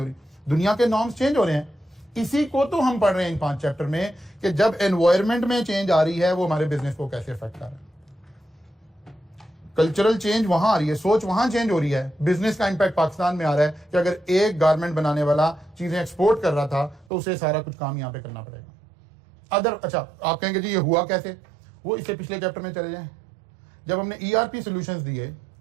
रही। दुनिया के नॉर्म्स चेंज हो रहे हैं। इसी को तो हम पढ़ रहे हैं इन 5 चैप्टर में कि जब एनवायरमेंट में चेंज आ रही है वो हमारे बिजनेस को कैसे अफेक्ट कर रहा है। कल्चरल चेंज वहां आ रही है, सोच वहां चेंज हो रही है। बिजनेस का इंपैक्ट पाकिस्तान में आ रहा है कि अगर एक गारमेंट बनाने वाला चीजें एक्सपोर्ट कर रहा था तो उसे सारा कुछ काम यहां पे करना पड़ेगा। अच्छा आप कहेंगे जी ये हुआ कैसे? वो इससे पिछले चैप्टर में चले जाएं। जब हमने ईआरपी सॉल्यूशंस दिए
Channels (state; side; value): drops out; left; at 17.1 s